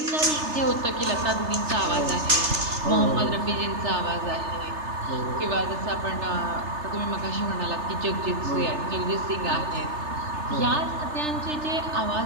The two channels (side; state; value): left; late; 3.3 ms